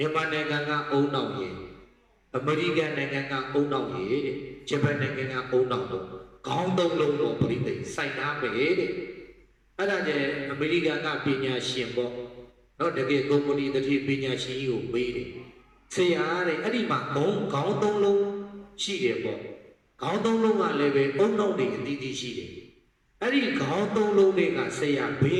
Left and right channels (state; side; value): identical; both; correlation 1.00